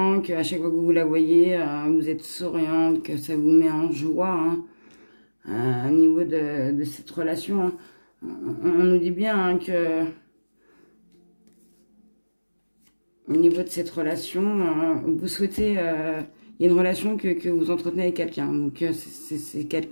qu'à chaque fois que vous la voyez, vous êtes souriante, que ça vous met en joie au niveau de cette relation. On nous dit bien que au niveau de cette relation, vous souhaitez, il y a une relation que vous entretenez avec quelqu'un. Donc c'est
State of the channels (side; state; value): both; inverted; correlation -1.00